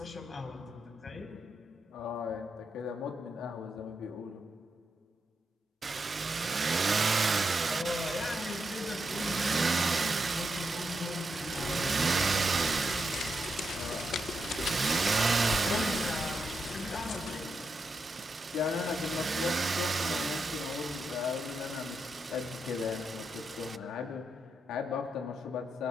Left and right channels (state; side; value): normal; both; correlation 0.84